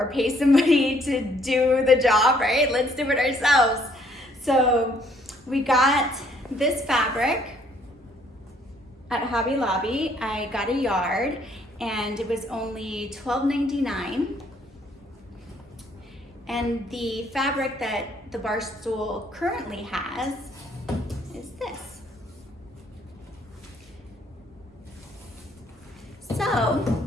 pay somebody to do the job, right? Let's do it ourselves. So we got this fabric at Hobby Lobby. I got a yard and it was only $12.99. And the fabric that the bar stool currently has is this. So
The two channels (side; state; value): both; normal; correlation 0.65